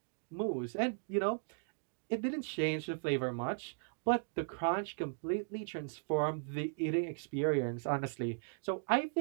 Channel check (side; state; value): left; silent; digital silence